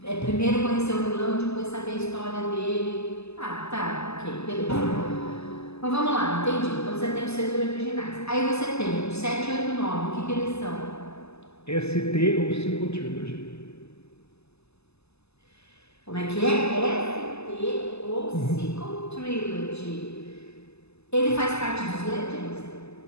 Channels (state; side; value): late; right; 0.79 ms